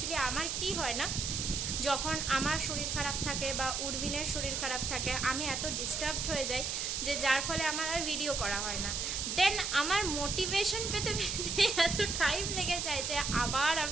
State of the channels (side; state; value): right; noise; hiss, 1 dB below the sound